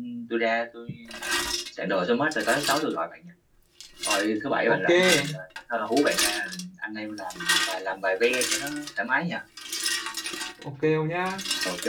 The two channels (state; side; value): identical; both; correlation 1.00